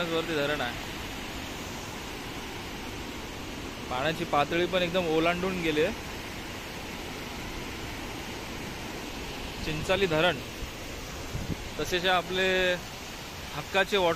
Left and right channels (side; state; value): both; identical; correlation 1.00